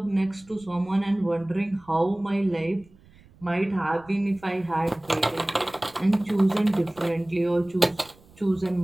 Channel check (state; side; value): noise; right; rumble, 27 dB below the sound